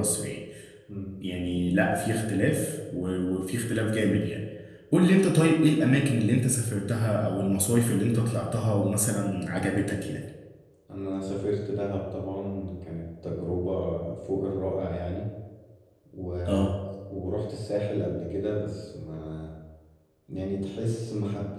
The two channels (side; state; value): both; identical; correlation 1.00